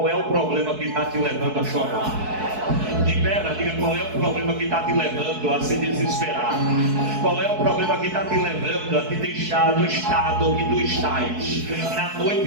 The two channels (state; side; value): late; left; 4.6 ms